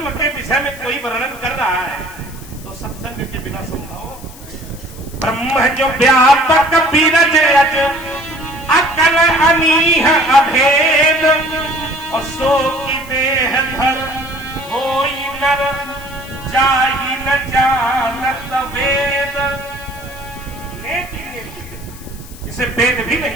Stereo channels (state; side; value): noise; left; hiss, 19 dB below the sound